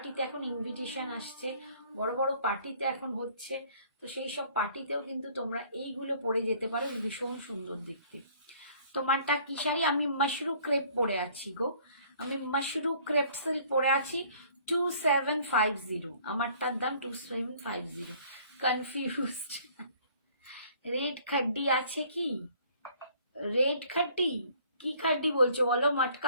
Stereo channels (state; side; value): inverted; both; correlation -0.56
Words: এখন ইনভিটেশন আসছে, বড় বড় পার্টিতে এখন হচ্ছে, তো সেই সব পার্টিতেও কিন্তু তোমরা এইগুলো পরে যেতে পারো, ভীষণ সুন্দর দেখতে। তোমারটা কি শাড়ি? আমি মাশরু ক্রেপ পরে আছি গো, আমি মাশরু ক্রেপ সিল্ক পরে আছি। 2750, আমারটার দাম 2750। কনফিউজড। রেড খাড্ডি আছে কি? রেড খাড্ডি কি খাড্ডি বলছো বলো?